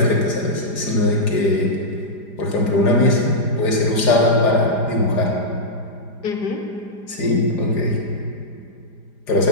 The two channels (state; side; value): late; right; 4.9 ms